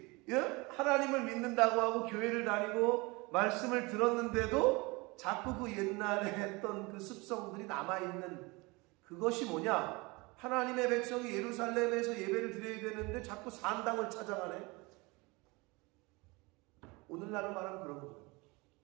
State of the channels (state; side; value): quieter; left; 25.3 dB